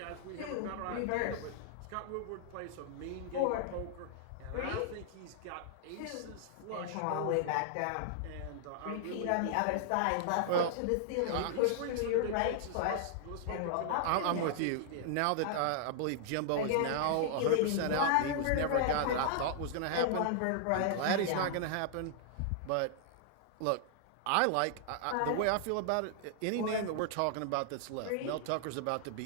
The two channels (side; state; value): both; different; correlation -0.01